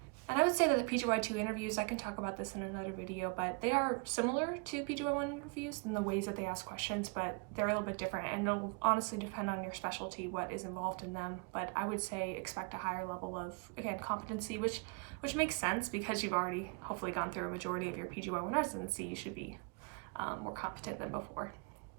And I would say that the PGY2 interviews, I can talk about this in another video, but they are similar to PGY1 interviews in the ways that they ask questions, but they're a little bit different, and it'll honestly depend on your specialty, what is involved in them. But I would say expect a higher level of, again, competency, which makes sense because you've already hopefully gone through a majority of your PGY1 residency. You should be more competent than before.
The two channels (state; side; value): quieter; left; 34.1 dB